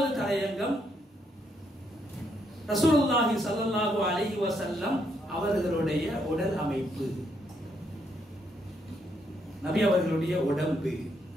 தலையங்கம் ரசூலுல்லாஹி ஸல்லல்லாஹு அலைஹி வஸல்லம் அவர்களுடைய உடல் அமைப்பு, நபி அவர்களுடைய உடம்பு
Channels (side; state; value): both; normal; correlation 0.75